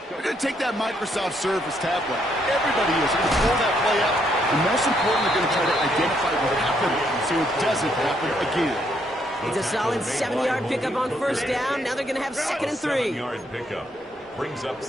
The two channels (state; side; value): normal; both; correlation 0.73